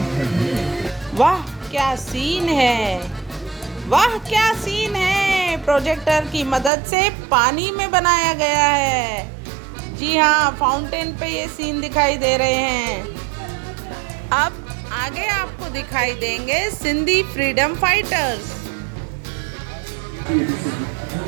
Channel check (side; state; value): left; drops out; at 6.7 s